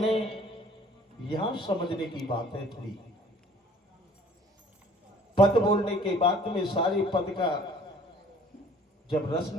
यहां समझने की बात है थोड़ी। पद बोलने के बाद में सारे पद का जब रस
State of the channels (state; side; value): normal; both; correlation 0.53